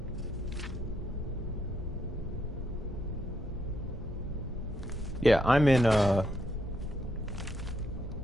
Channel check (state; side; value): normal; both; correlation 0.77